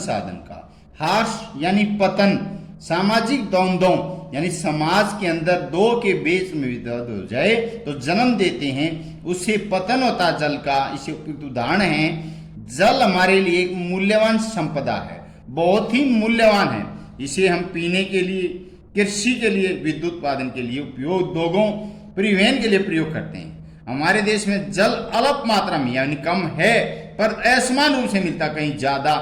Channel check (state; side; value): identical; both; correlation 1.00